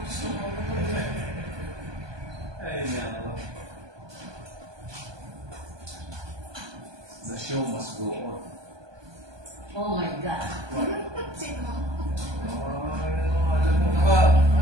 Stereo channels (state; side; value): late; left; 1.2 ms